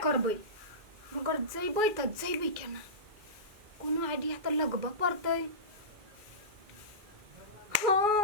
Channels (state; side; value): late; left; 2.4 ms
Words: करबै मगर जइबै त जइबै केना कोनो आइडिया त लगबे पड़तै